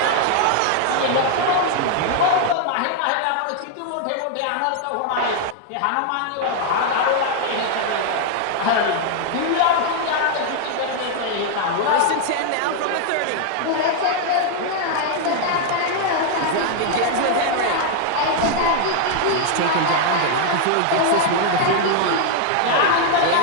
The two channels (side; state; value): both; different; correlation 0.00